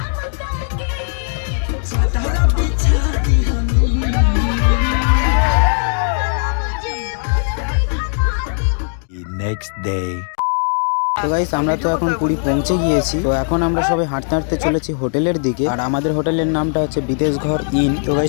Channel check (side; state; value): right; silent; 63 dB below the other